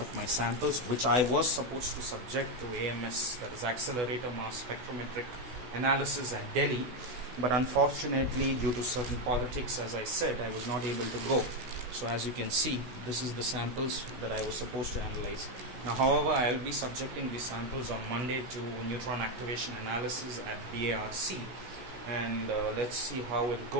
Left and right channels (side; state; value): left; late; 16 ms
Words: of my samples, which I was supposed to subject to AMS, that is Accelerator Mass Spectrometric Analysis at Delhi, but unfortunately due to certain politics, as I said, I was not able to go. So as you can see, this is the samples that I was supposed to analyze. Now, however, I will be subjecting these samples on Monday to neutron activation analysis at DARC, and let's see how it